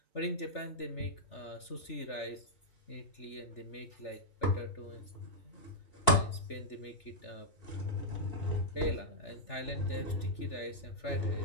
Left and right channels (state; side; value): late; right; 3.4 ms